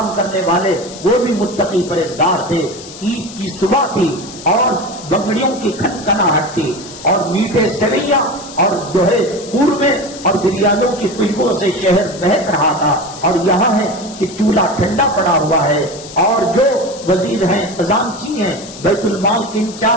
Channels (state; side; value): noise; left; hiss, 15 dB below the sound